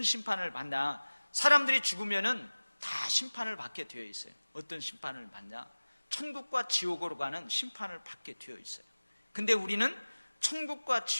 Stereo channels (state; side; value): inverted; both; correlation -1.00